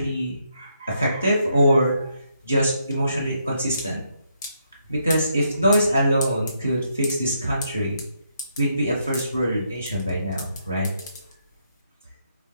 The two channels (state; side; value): inverted; both; correlation -0.76